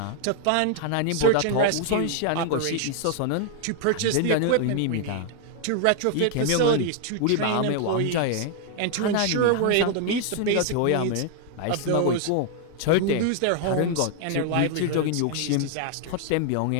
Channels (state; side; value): different; both; correlation 0.00